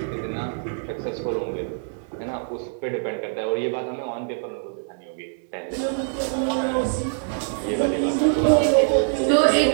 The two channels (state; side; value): silent; left; digital silence